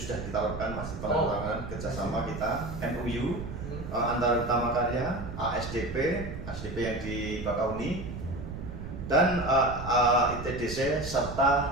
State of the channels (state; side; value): noise; right; rumble, 9 dB below the sound